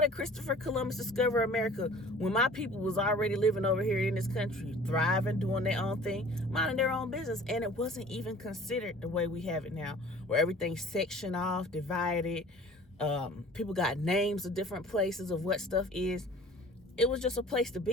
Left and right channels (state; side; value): normal; both; correlation 0.47